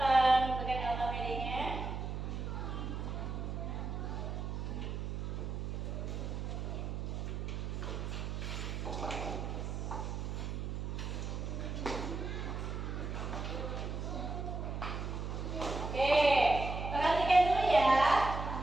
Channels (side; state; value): right; noise; hum, 4 dB below the sound